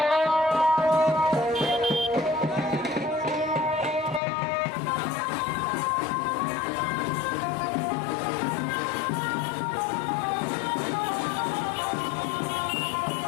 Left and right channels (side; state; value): right; drops out; at 4.2 s